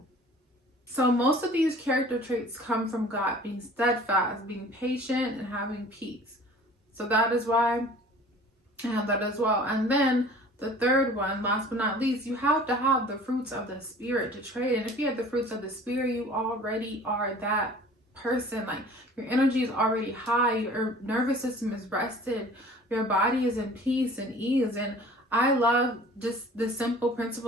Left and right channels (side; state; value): both; normal; correlation 0.47